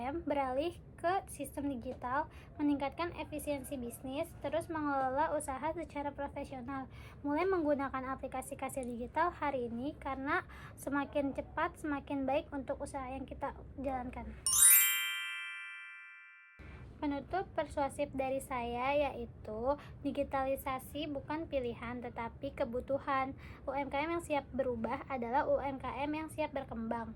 beralih ke sistem digital, meningkatkan efisiensi bisnis, terus mengelola usaha secara profesional. Mulai menggunakan aplikasi kasir digital hari ini, karena semakin cepat semakin baik untuk usaha yang kita jalankan. Penutup persuasif dari saya yaitu digitalisasi bukan pilihan tetapi kebutuhan. UMKM yang siap berubah adalah UMKM yang siap berkembang.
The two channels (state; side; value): identical; both; correlation 1.00